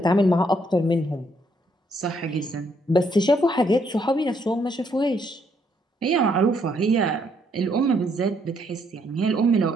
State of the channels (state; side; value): normal; both; correlation 0.71